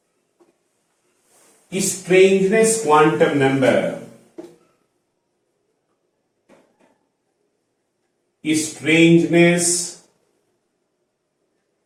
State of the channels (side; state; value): both; identical; correlation 1.00